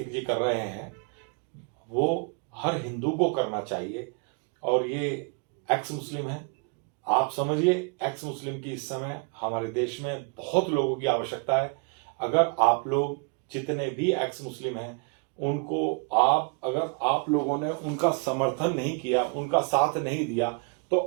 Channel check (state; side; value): quieter; left; 36.0 dB